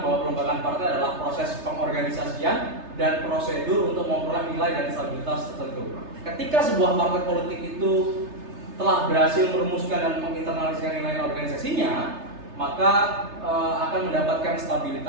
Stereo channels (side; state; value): left; late; 3.3 ms